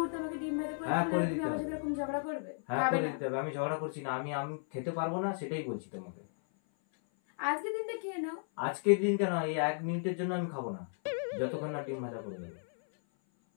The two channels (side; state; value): right; silent; 55 dB below the other